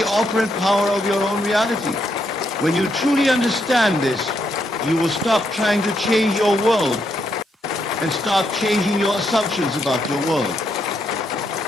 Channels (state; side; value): normal; both; correlation 0.78